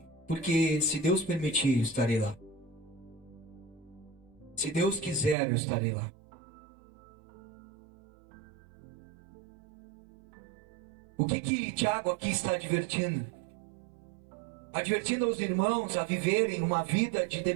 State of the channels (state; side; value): drops out; left; at 5.4 s